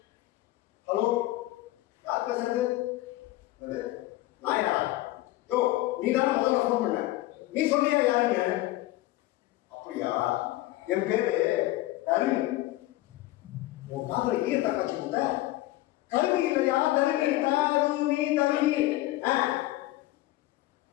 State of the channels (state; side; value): quieter; right; 17.3 dB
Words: ஹலோ, யார் பேசுறது? நான் யாரா? யோ, நீ தானே முதல்ல ஃபோன் பண்ண. நீ சொன்னியா யாருன்னு? அப்படியா? என் பேரு தருணி. உன் காதல ஈயத்தை காட்சி போட்ட கல்வி இல்லையா? தருணி தருணி.